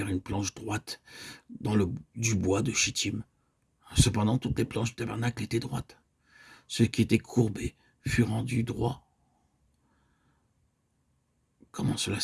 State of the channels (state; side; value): identical; both; correlation 1.00